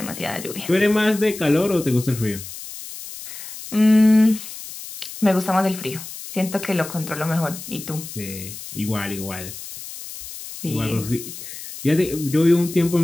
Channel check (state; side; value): noise; left; hiss, 12 dB below the sound